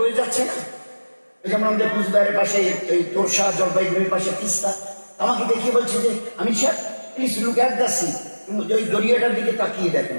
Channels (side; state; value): both; inverted; correlation -1.00